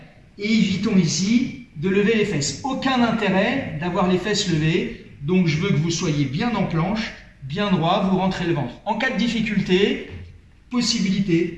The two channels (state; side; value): identical; both; correlation 1.00